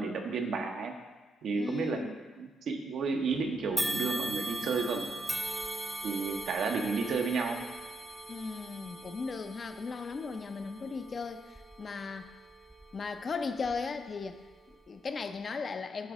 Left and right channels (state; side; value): normal; both; correlation 0.79